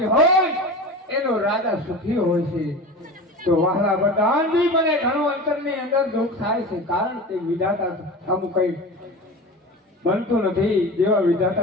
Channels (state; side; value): normal; both; correlation 0.32